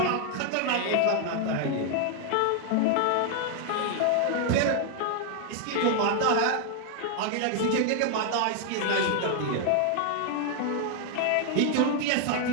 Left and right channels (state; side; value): different; both; correlation 0.00